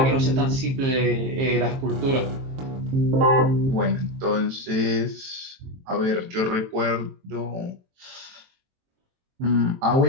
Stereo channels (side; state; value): left; late; 22 ms